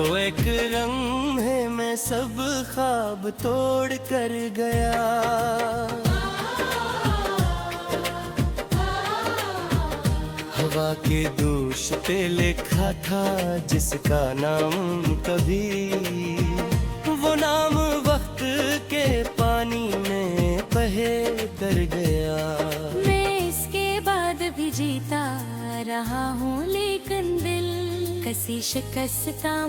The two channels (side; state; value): both; identical; correlation 1.00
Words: एक लम्हे में सब ख्वाब तोड़ कर गया। हवा के दोष पे लिखा था जिसका नाम कभी, वो नाम वक्त के पानी में बहे कर गया। मैं इसके बाद भी जीता रहा हूँ, लेकिन दिल कसी शिकस्ता